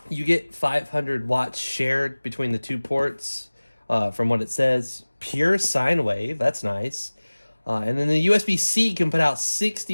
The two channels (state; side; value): inverted; both; correlation -1.00